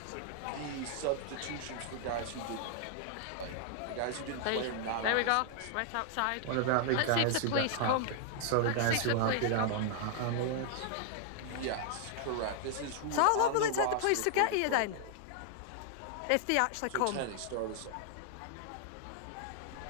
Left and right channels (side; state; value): both; different; correlation -0.01